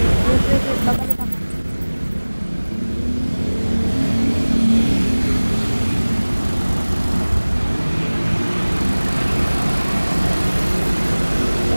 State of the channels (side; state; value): both; inverted; correlation -1.00